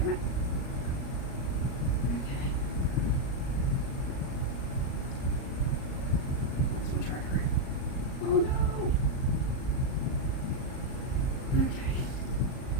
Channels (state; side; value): late; right; 38 ms